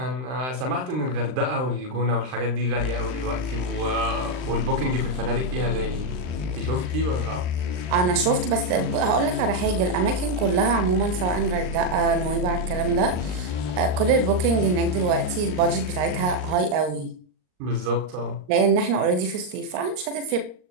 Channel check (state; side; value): late; left; 39 ms